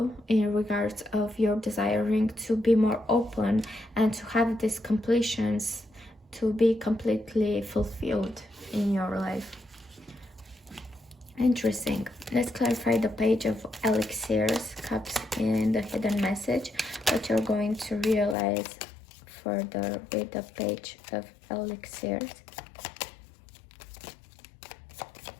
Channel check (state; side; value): drops out; right; at 18.4 s